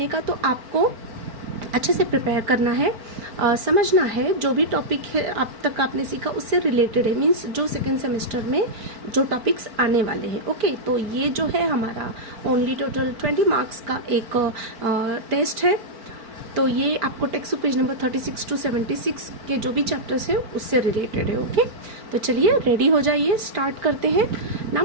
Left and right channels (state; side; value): late; left; 4.4 ms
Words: का। तो आपको अच्छे से प्रिपेयर करना है, समझना है जो भी टॉपिक है अब तक आपने सीखा उससे रिलेटेड है, मीन्स जो सेकेंड सेमेस्टर में जो टॉपिक्स आने वाले हैं। ओके, तो ये जो है हमारा ओनली टोटल 20 मार्क्स का एक टेस्ट है। तो ये आपको text book page number 36 to 76 के जो भी चैप्टर्स हैं उससे रिलेटेड है। ओके, तो चलिए रेडी हो जाइए, स्टार्ट करते हैं।